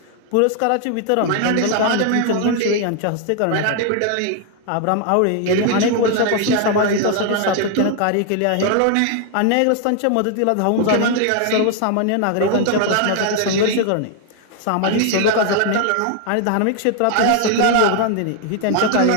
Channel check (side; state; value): both; different; correlation 0.00